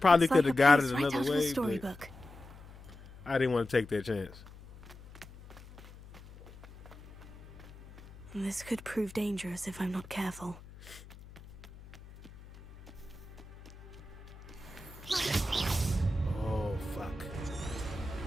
It's could like have got a it place right another out of a way, but storybook. I didn't want to take that chance. This could prove dangerous if I'm not careful. Oh fuck!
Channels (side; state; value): left; noise; hum, 18 dB below the sound